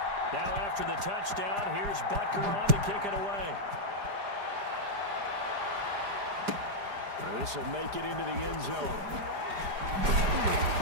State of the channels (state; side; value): late; left; 4.9 ms